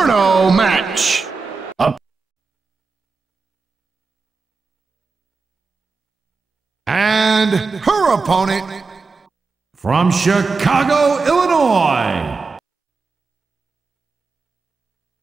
match. And her opponent from Chicago, Illinois.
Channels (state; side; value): quieter; left; 4.4 dB